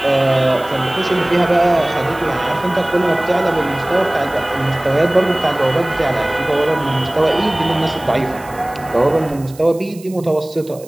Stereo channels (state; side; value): noise; right; hiss, 22 dB below the sound